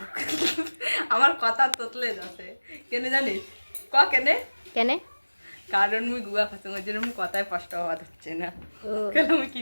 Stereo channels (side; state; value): both; inverted; correlation -1.00